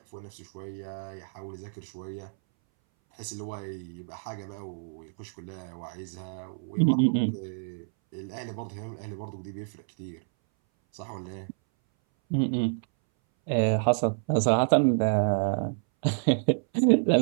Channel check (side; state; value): left; silent; 59 dB below the other